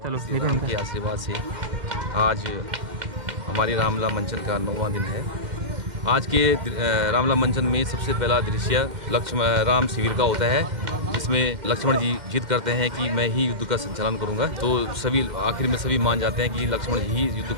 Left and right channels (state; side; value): late; left; 2.1 ms